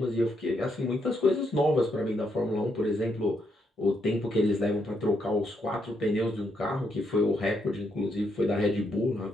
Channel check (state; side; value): normal; both; correlation 0.77